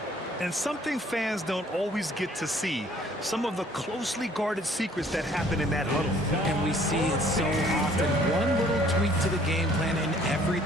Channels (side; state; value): both; normal; correlation 0.58